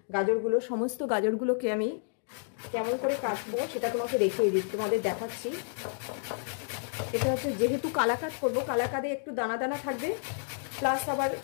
গাজরগুলো, সমস্ত গাজরগুলোকে আমি কেমন করে কাটবো সেটা তোমাকে দেখিয়ে দিচ্ছি, তোমাদের দেখাচ্ছি। এটা হচ্ছে যেহেতু কালাকাঁদ করবো, কালাকাঁদে একটু দানা দানা থাকবে, প্লাস আবার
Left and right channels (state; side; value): silent; right; digital silence